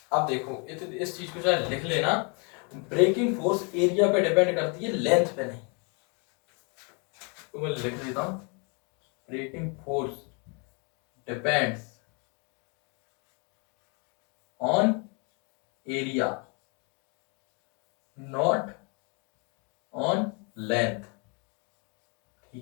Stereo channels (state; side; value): quieter; right; 34.8 dB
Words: अब देखो इस चीज को चाहे लिख लेना, ब्रेकिंग फोर्स एरिया पे डिपेंड करती है, लेंथ पे नहीं। तो मैं लिख देता हूं, breaking force depends on area not on length,